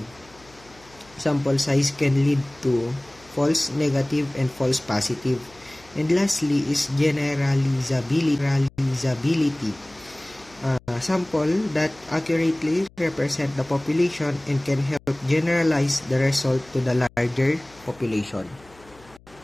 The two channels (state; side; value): noise; left; hum, 26 dB below the sound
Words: Sample size can lead to false negative and false positive. And lastly is generalizability. Sample that accurately represent the population and can help generalize the result to the larger population.